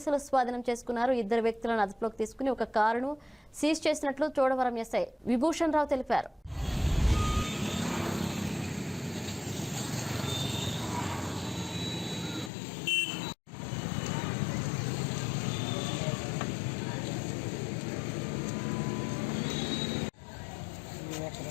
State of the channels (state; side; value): drops out; right; at 12.5 s